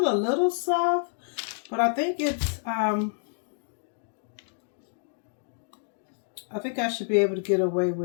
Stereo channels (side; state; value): right; silent; digital silence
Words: a little soft, but I think it's I think I should be able to get away